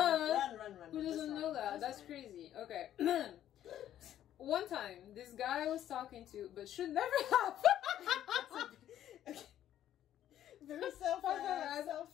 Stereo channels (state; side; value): quieter; right; 11.5 dB